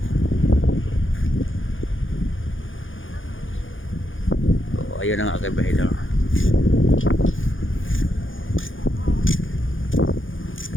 So, ayun ang aking bahidor.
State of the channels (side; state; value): right; late; 0.58 ms